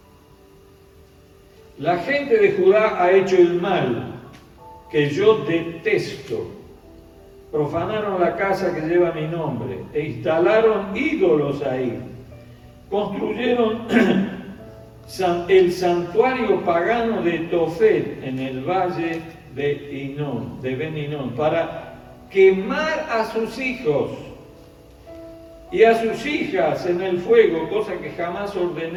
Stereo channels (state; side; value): identical; both; correlation 1.00